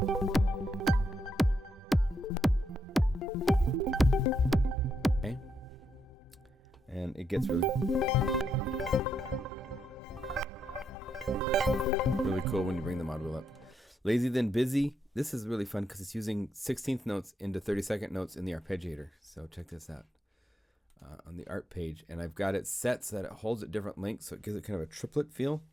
Okay. And it gets really cool when you bring the mod wheel up. Lazy Then Busy. This is really fun because it's using 16th notes into 32nd notes in the arpeggiator. So check this out on the art page. And I've got it set so that it holds at different lengths, so it gives it kind of a triplet feel.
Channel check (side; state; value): both; normal; correlation 0.79